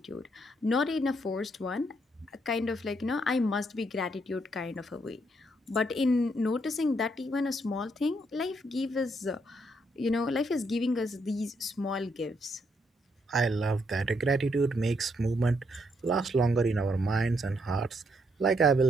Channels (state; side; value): normal; both; correlation 0.75